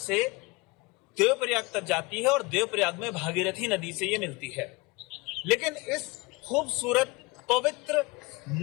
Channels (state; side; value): quieter; right; 25.1 dB